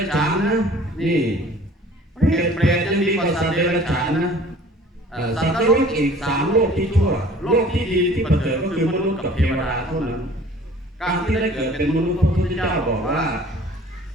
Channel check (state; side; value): normal; both; correlation 0.49